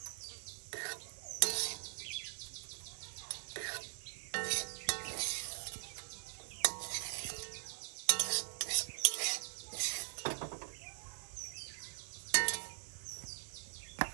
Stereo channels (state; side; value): silent; left; digital silence